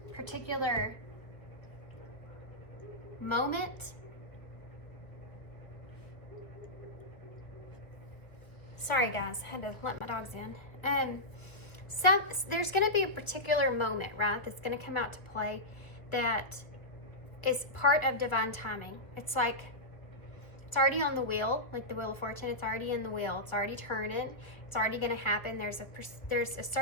particular moment. Sorry guys, I had to let my dogs in. There's going to be a particular moment, right, that's going to come out to play that is part of divine timing. It's like It's already on the wheel, like the Wheel of Fortune. It's already in the wheel. It's already turning. It's already going to happen. There's a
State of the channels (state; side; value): late; right; 1.0 ms